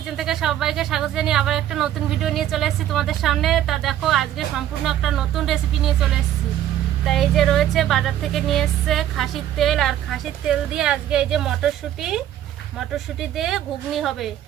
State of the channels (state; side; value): quieter; left; 11.7 dB